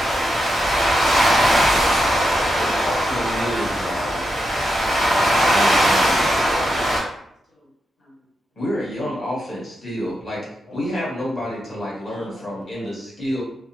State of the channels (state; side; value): normal; both; correlation 0.86